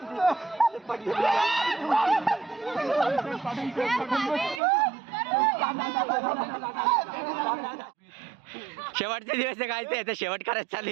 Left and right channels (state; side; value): drops out; left; at 4.6 s